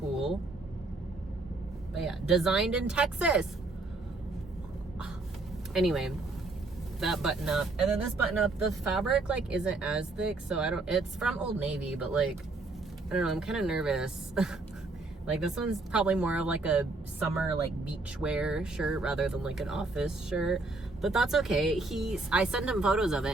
But yeah, designed in Texas. Anyway, that button up. And then this button up, the fabric like isn't as thick, so it's from Old Navy, but like, I don't know, I'm kind of nervous. Like this one's probably more of like a summer like beach wear shirt rather than like an office shirt, but that's okay. I sent him photos of it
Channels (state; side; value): quieter; left; 3.3 dB